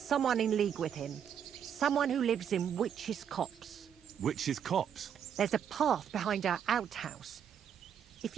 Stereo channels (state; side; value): quieter; left; 8.5 dB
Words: in league with him. Someone who lives in Witch's Copse. Witch's Copse? There's a path behind our outhouse. If